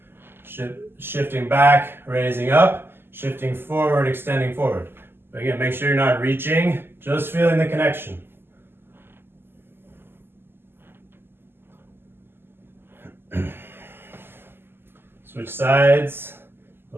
shifting back, raising up, shifting forward, extending forward. But again, make sure you're not reaching, just feeling the connection. Switch sides,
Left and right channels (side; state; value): left; late; 0.11 ms